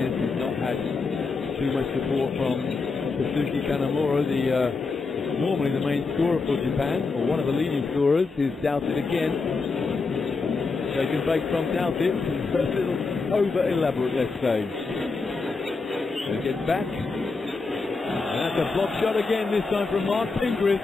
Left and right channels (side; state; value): right; quieter; 4.2 dB